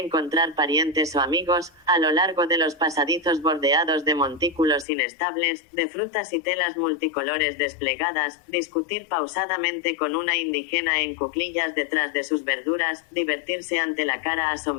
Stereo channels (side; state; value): right; drops out; at 4.9 s